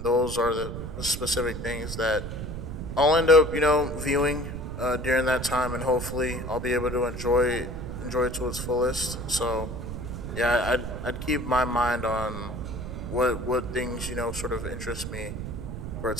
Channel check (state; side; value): noise; right; rumble, 7 dB below the sound